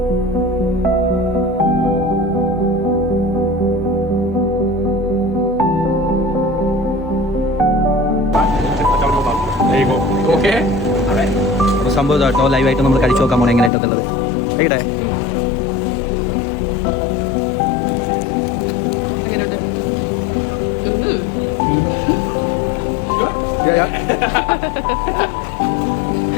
അപ്പോൾ സംഭവം കേട്ടോ, ലൈവായിട്ട് നമ്മൾ കഴിച്ചു നോക്കാൻ പോകണം എങ്ങനെയായിട്ടുള്ളത്. എവിടെ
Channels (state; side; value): drops out; right; at 13.7 s